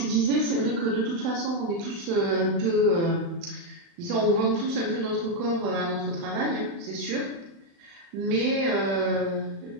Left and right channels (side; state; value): left; late; 36 ms